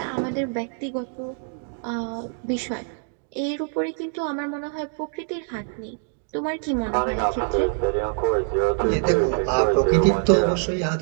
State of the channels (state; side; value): silent; left; 58 dB below the other